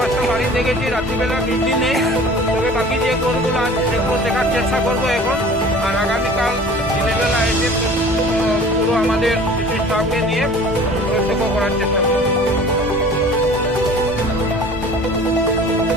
বাড়ি দেখেছি, রাত্রিবেলা বৃষ্টি নেই, তবে বাকি যে ঘরগুলো আছে সেগুলো দেখার চেষ্টা করবো এখন। আর আগামীকাল দিনের বেলা এসে পুরো আমাদের কিছু স্টাফকে নিয়ে প্রত্যক্ষ করার চেষ্টা করবো।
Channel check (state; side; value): normal; both; correlation 0.45